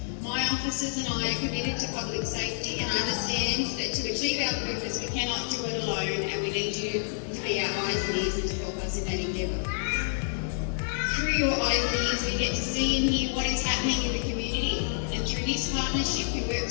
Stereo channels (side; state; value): right; silent; digital silence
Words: My officers and I are committed to public safety and understand that to achieve our purpose we cannot do it alone, and we need you to be our eyes and ears and to help us in that endeavour. Through your eyes and ears we get to see and hear what is happening in the community, and through this partnership we work